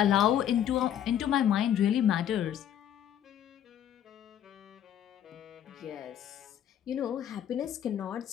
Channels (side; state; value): right; quieter; 10.2 dB